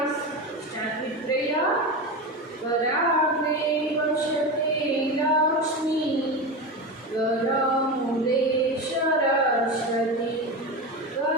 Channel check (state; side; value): normal; both; correlation 0.21